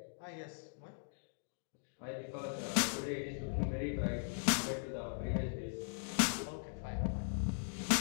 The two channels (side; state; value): right; silent; digital silence